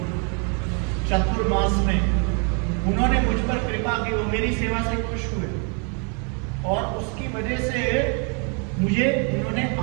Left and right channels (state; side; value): quieter; left; 37.2 dB